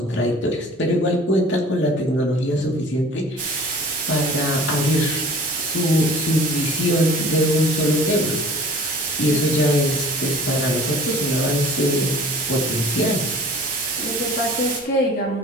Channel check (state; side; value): normal; both; correlation 0.46